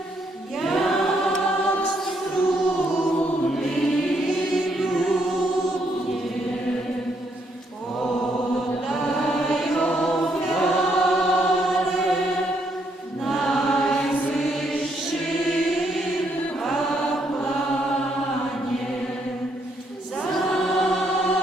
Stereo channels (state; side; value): normal; both; correlation 0.74